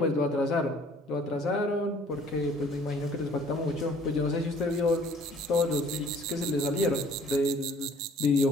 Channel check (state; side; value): normal; both; correlation 0.55